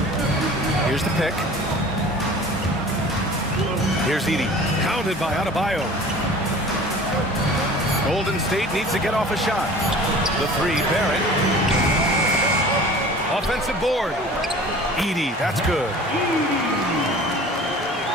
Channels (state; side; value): normal; both; correlation 0.44